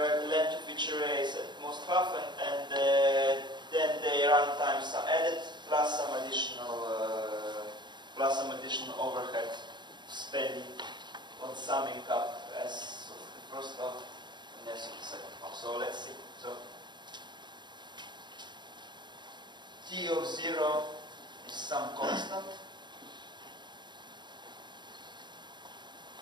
the length of each array is at most half, and then the runtimes are added plus some additional overhead spending on summing up as of the first half and as of the second half. So let's see. So t of 0 is some constant.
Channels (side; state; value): left; late; 0.22 ms